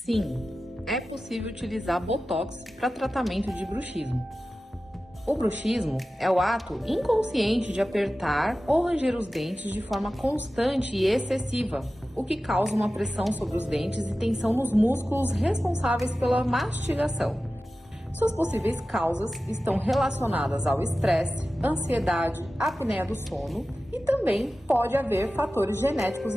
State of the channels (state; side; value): normal; both; correlation 0.95